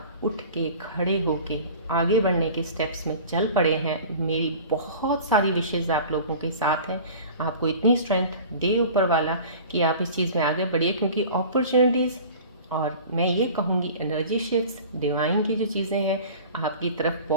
उठ के खड़े होके आगे बढ़ने के स्टेप्स में चल पड़े हैं, मेरी बहुत सारी विशेज़ आप लोगों के साथ हैं। आपको इतनी स्ट्रेंथ दे ऊपर वाला कि आप इस चीज़ में आगे बढ़िए, क्योंकि अपॉर्चुनिटीज़ और मैं ये कहूँगी एनर्जी शिफ्ट्स, डिवाइन की जो चीज़ें हैं आपकी तरफ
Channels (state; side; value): inverted; both; correlation -0.41